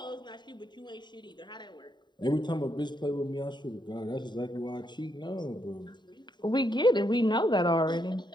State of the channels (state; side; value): late; right; 0.22 ms